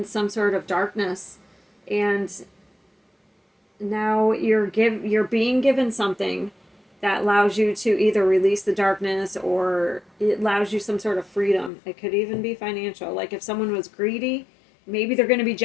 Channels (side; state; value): right; drops out; at 11.7 s